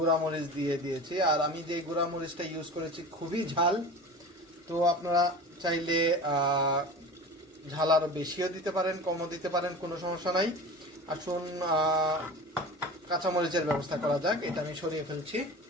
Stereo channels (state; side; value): normal; both; correlation 0.35